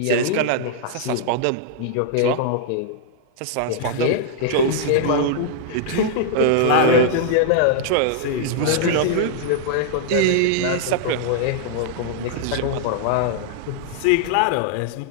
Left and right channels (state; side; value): different; both; correlation -0.01